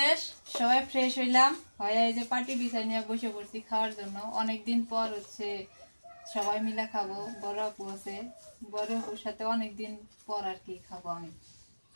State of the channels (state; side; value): inverted; both; correlation -1.00